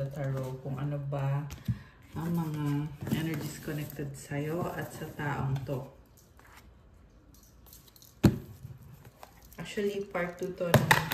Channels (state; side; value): identical; both; correlation 1.00